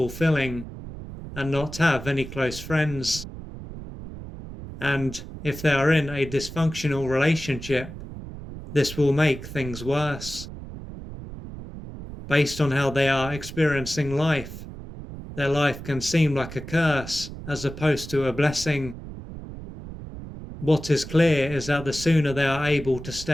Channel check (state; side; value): noise; right; rumble, 12 dB below the sound